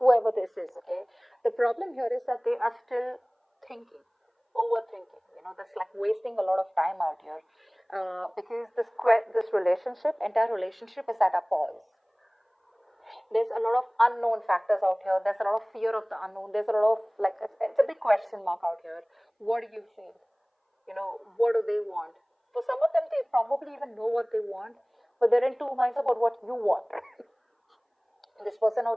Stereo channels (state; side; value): identical; both; correlation 1.00